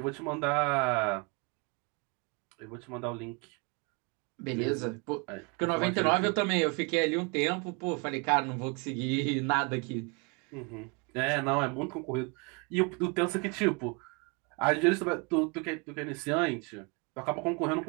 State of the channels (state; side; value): quieter; left; 31.9 dB